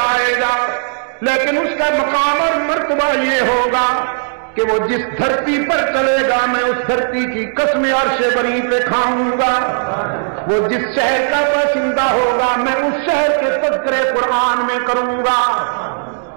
آئے گا، لیکن اس کا مقام اور مرتبہ یہ ہوگا کہ وہ جس دھرتی پر چلے گا میں اس دھرتی کی قسم عرش بری پہ کھاؤں گا. وہ جس شہر کا باشندہ ہوگا میں اس شہر کے تذکرے قرآن میں کروں گا.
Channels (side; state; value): left; silent; digital silence